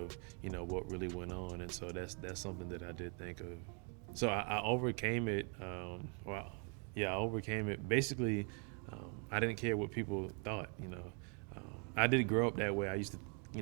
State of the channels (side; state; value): left; quieter; 38.2 dB